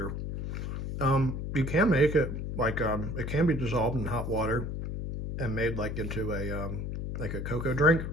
You can make it like it can be dissolved in hot water and made like into a cocoa drink.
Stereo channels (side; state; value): left; noise; hum, 4 dB below the sound